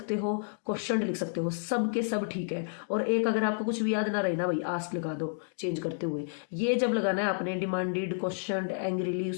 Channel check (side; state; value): right; silent; digital silence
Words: हो, क्वेश्चनड लिख सकते हो, सब के सब ठीक है। और एक अगर आपको कुछ भी याद ना रहे ना भाई, आस्ट लगा दो चेंज करते हुए। ये जब लगाना है आपने, डिमांडेड, क्वेश्चनड, एंग्रीली,